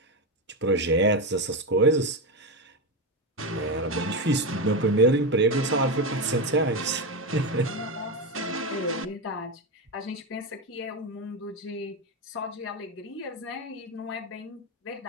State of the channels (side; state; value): both; normal; correlation 0.13